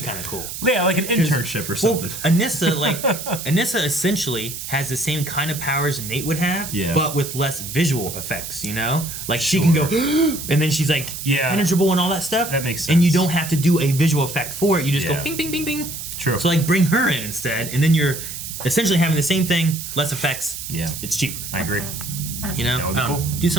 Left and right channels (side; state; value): right; noise; hiss, 8 dB below the sound